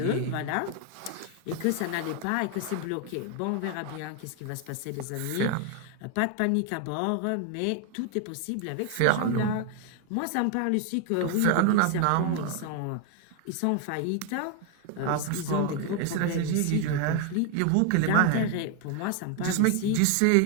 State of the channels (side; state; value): both; different; correlation 0.01